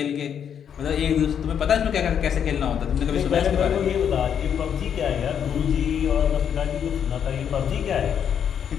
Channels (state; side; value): quieter; right; 8.3 dB